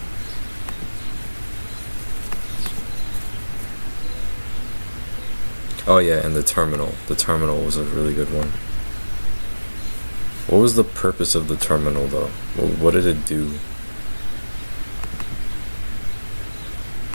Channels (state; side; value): inverted; both; correlation -1.00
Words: Oh yeah, and the terminal. The terminal was a really good one. What was the purpose of the terminal, though? What did it do?